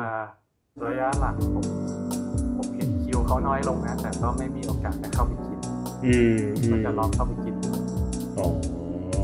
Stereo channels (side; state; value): both; identical; correlation 1.00